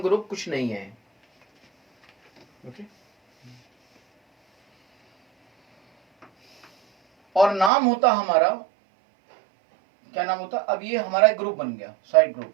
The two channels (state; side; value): drops out; left; at 7.7 s